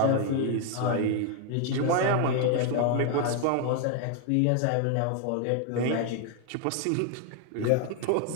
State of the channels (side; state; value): both; different; correlation 0.01